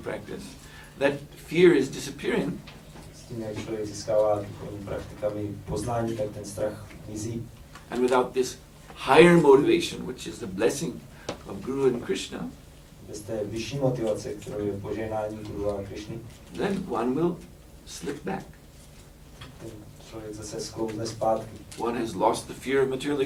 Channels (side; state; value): both; identical; correlation 1.00